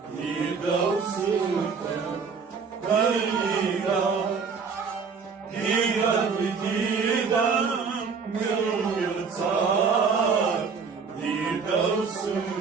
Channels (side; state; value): left; quieter; 5.5 dB